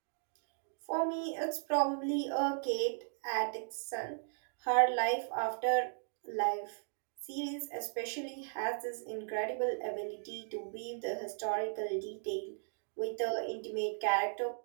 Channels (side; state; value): left; silent; digital silence